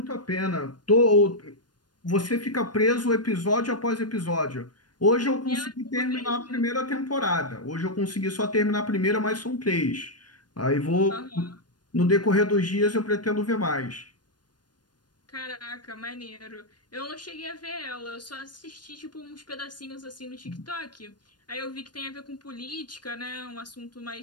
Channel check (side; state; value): right; late; 0.70 ms